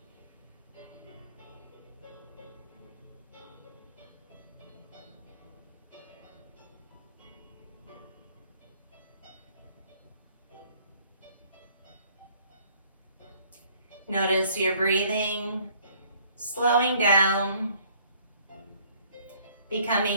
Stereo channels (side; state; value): both; inverted; correlation -0.59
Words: Notice your breathing, slowing down,